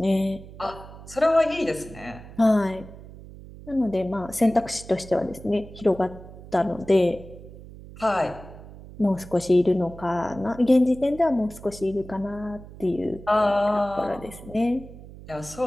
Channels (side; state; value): right; noise; hum, 16 dB below the sound